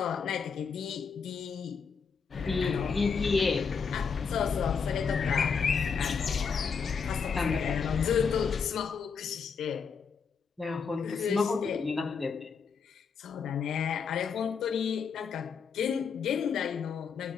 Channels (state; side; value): quieter; right; 5.9 dB